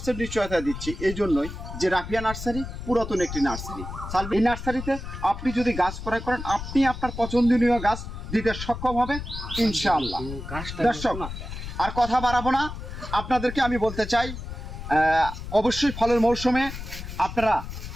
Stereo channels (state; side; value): noise; left; rumble, 9 dB below the sound